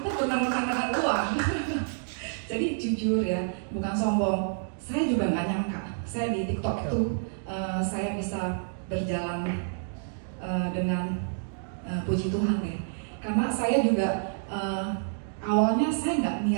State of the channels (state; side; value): silent; left; digital silence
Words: benar-benar dengan uang. Jadi jujur ya, bukan sombong. Saya juga nggak nyangka. Saya di TikTok itu saya bisa berjalan dengan puji Tuhan ya. Karena saya juga awalnya saya nggak